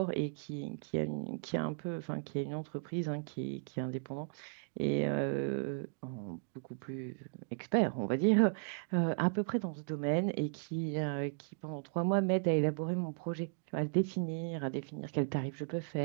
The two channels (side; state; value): left; silent; digital silence